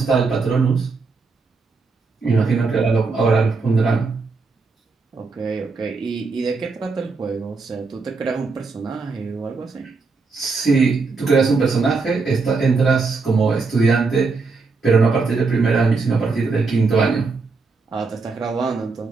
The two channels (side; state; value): left; quieter; 4.3 dB